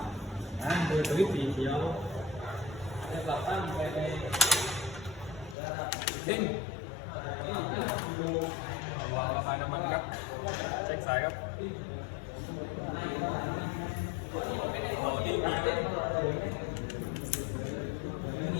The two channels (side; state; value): right; drops out; at 5.6 s